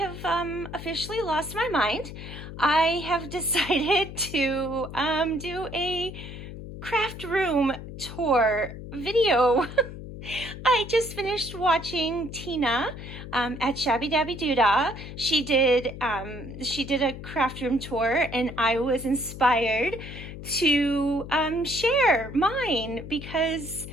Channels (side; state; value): left; noise; hum, 11 dB below the sound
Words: officially lost my mind. I have decided to do a craft room tour video. I just finished watching Tina at Shabby Dabby Doodah. She did a craft room tour, and I was inspired to share mine because